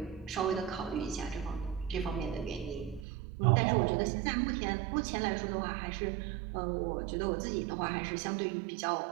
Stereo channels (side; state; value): left; drops out; at 3.1 s